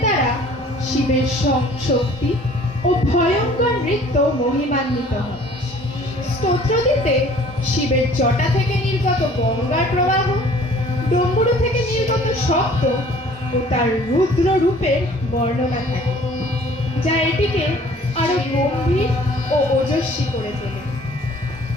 দ্বারা শিবের শক্তি ও ভয়ঙ্কর নৃত্য মহিমান্বিত হয়। স্তোত্রটিতে শিবের জটা থেকে নির্গত গঙ্গার প্রবাহ, ডমরু থেকে নির্গত শব্দ ও তার রুদ্র রূপের বর্ণনা থাকে, যা এটিকে আরো গম্ভীর ও ওজস্বী করে তোলে।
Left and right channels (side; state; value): both; normal; correlation 0.52